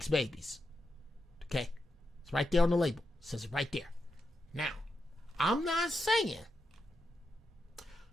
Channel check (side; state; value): both; normal; correlation 0.86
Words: babies. Okay? It's right there on the label. It says it right there. Now, I'm not saying,